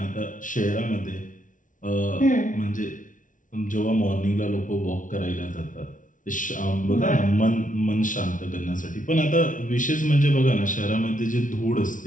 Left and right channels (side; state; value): right; late; 0.38 ms